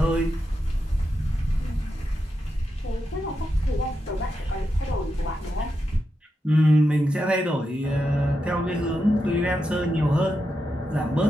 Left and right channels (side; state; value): both; normal; correlation 0.87